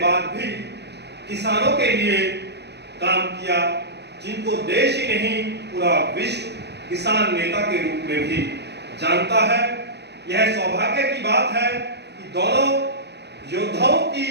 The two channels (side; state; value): left; late; 0.49 ms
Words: भी किसानों के लिए काम किया, जिनको देश ही नहीं पूरा विश्व किसान नेता के रूप में भी जानता है। यह सौभाग्य की बात है कि दोनों योद्धाओं की